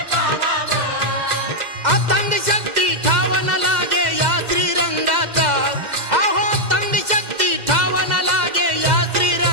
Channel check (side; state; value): left; late; 2.0 ms